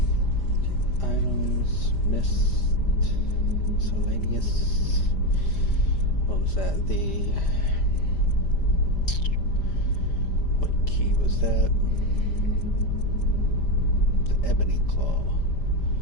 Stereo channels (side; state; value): right; late; 5.0 ms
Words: Items, missed, miscellaneous. What was that? What key was that? The ebony claw.